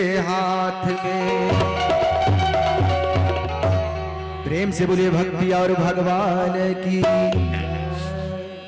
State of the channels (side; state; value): both; identical; correlation 1.00